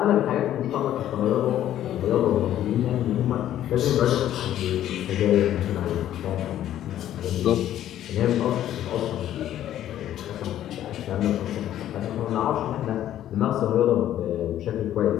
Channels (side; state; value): right; quieter; 11.9 dB